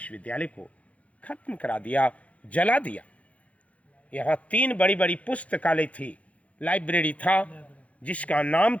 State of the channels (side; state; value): right; late; 0.065 ms